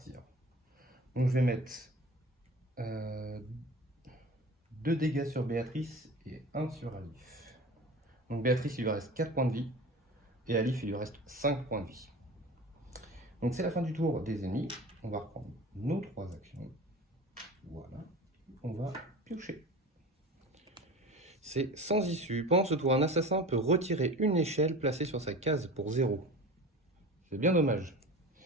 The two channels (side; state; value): both; normal; correlation 0.35